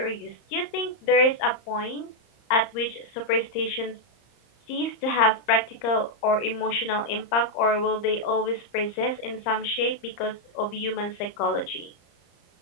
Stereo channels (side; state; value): right; late; 34 ms